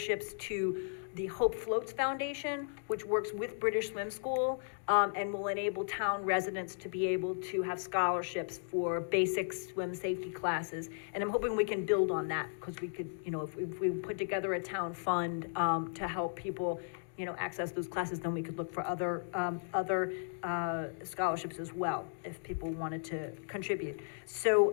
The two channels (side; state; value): right; silent; digital silence